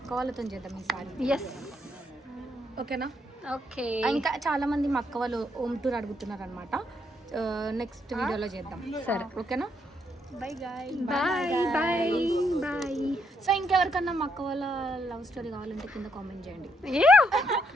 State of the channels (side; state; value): both; normal; correlation 0.76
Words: అక్క వాళ్ళతో చేద్దాం ఈసారి. ఎస్ ఓకేనా? ఓకే. ఇంకా చాలా మంది మా అక్క వాళ్ళు హోమ్ టూర్ అడుగుతున్నారు అనమాట. నెక్స్ట్ వీడియోలో చేద్దాం. సరే ఓకేనా? Bye bye bye. సో ఇంకెవరికన్నా మా అక్క వాళ్ళ లవ్ స్టోరీ కావాలంటే కింద కామెంట్ చేయండి.